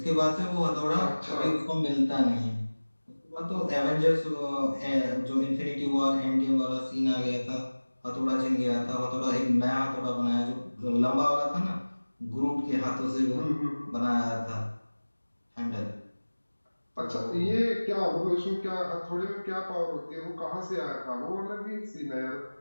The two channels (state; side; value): inverted; both; correlation -1.00